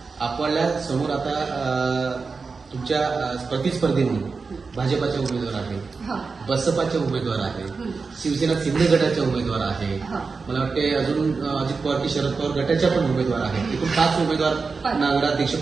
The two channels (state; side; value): quieter; left; 4.6 dB